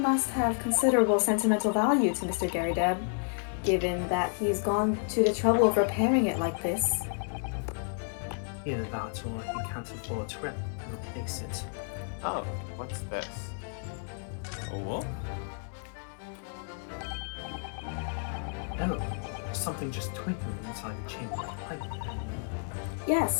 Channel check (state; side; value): silent; right; 57 dB below the other